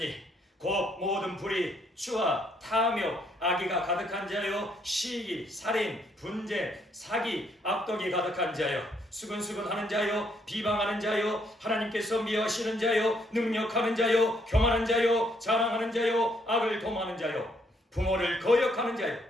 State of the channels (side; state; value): both; normal; correlation 0.71